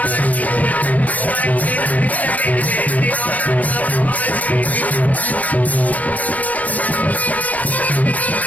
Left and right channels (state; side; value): late; right; 0.076 ms